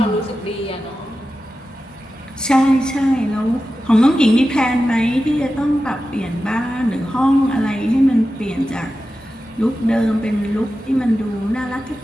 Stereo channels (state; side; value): normal; both; correlation 0.92